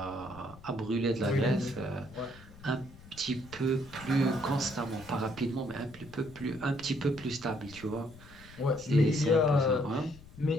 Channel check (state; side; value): noise; left; rumble, 20 dB below the sound